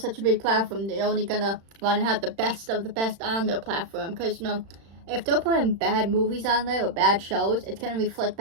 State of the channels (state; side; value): late; left; 36 ms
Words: a big platform, they're only gonna want to have the best of the best on their platform, because, you know, if they're putting bad movies on there, or bad shows, it's gonna reflect